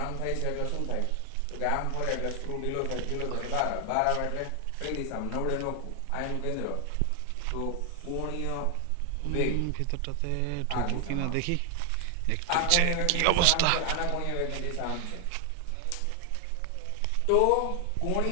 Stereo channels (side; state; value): both; different; correlation 0.00